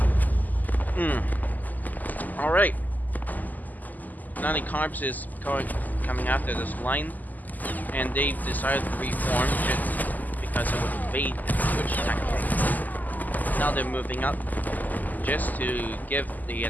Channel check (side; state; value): right; late; 0.083 ms